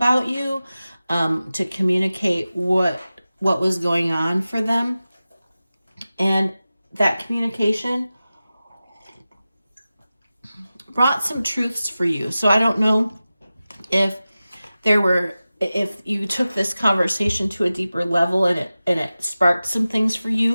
you, to communicate what was going on for them. And that communication brought some truths for you. So I don't know if you took this conversation to a deeper level and it sparked some things for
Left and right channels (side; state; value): both; inverted; correlation -0.95